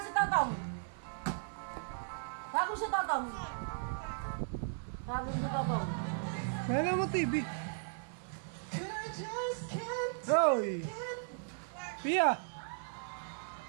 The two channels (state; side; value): silent; left; digital silence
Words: Totong. Tawagin si Totong. Tawagin si Totong. Kaya mo TV. Hoy! Pia!